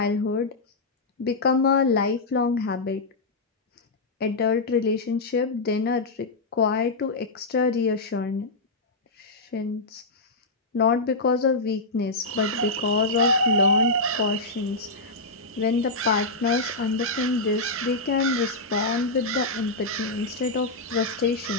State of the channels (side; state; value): right; quieter; 3.1 dB